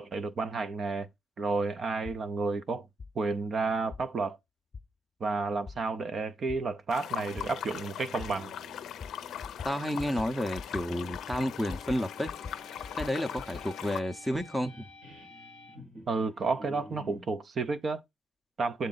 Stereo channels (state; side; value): normal; both; correlation 0.82